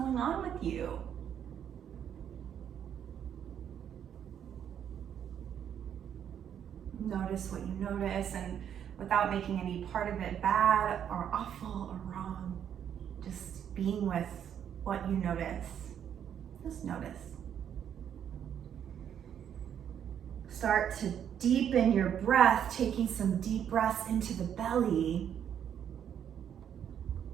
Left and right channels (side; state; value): left; quieter; 9.1 dB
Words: on with you. Notice what you notice, and without making any part of it bad or awful or wrong, just being with what you notice. Just notice. Start to deepen your breath, taking some deep breaths into the belly.